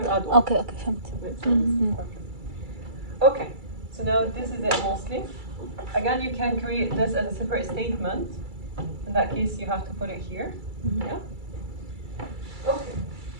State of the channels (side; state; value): left; late; 2.3 ms